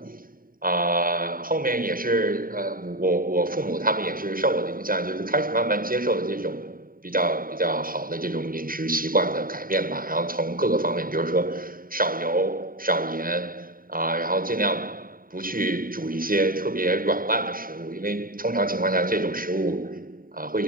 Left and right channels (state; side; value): late; left; 0.41 ms